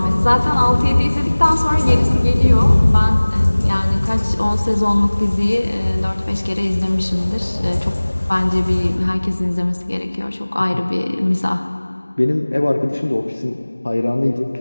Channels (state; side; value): inverted; both; correlation -1.00